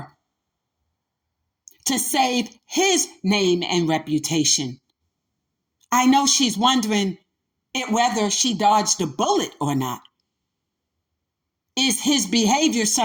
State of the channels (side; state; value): both; identical; correlation 1.00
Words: to save his name and reputation. I know she's wondering whether she dodged a bullet or not. Is his behavior